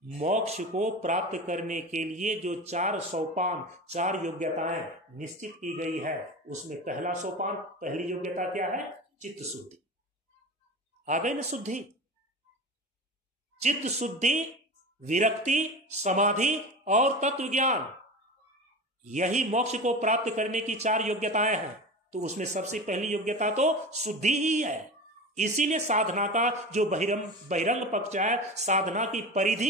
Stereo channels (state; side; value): normal; both; correlation 0.29